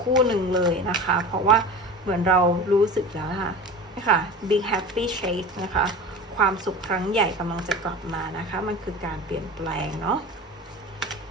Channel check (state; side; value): normal; both; correlation 0.33